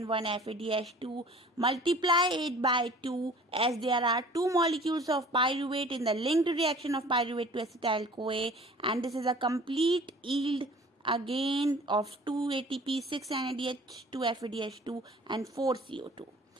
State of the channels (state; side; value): normal; both; correlation 0.48